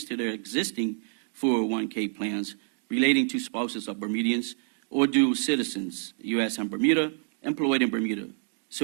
to their existing 401k plans relating to spouses of Bermudians or dual citizens, U.S. and Bermuda, employed in Bermuda,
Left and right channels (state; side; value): silent; left; digital silence